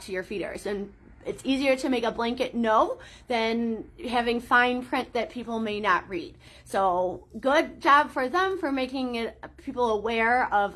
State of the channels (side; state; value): both; identical; correlation 1.00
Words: to your feeders. And it's easier to make a blanket no than having fine print that people may not read. So good job for them for making people aware of